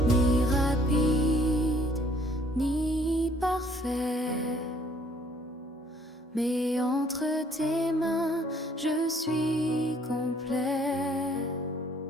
fait. Mais entre tes mains, je suis complet.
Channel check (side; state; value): both; normal; correlation 0.61